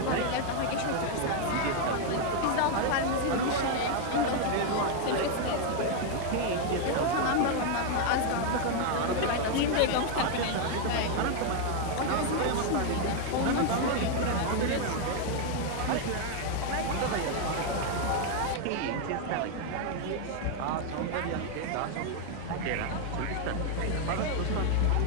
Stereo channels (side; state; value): both; different; correlation 0.00